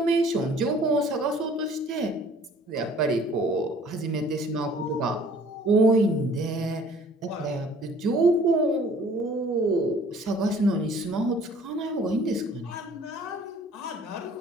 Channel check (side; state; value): both; normal; correlation 0.54